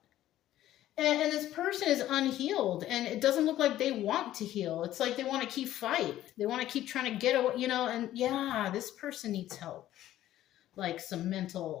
And this person is unhealed, and it doesn't look like they want to heal. It's like they want to keep fight. They want to keep trying to get away, you know, and yeah, this person needs help. Like some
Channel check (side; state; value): right; quieter; 13.4 dB